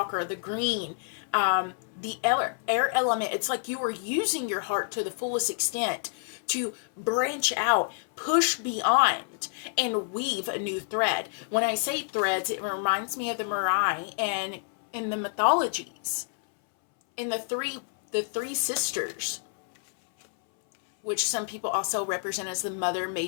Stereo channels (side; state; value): right; silent; 59 dB below the other